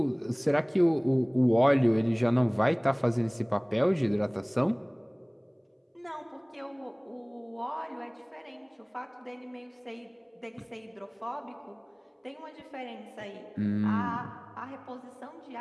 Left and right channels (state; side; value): identical; both; correlation 1.00